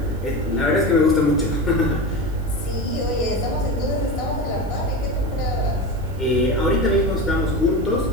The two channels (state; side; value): noise; right; hiss, 26 dB below the sound